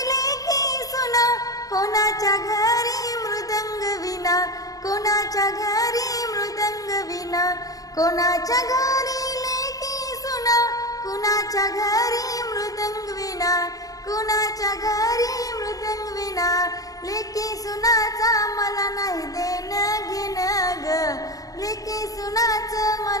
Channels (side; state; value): right; late; 0.17 ms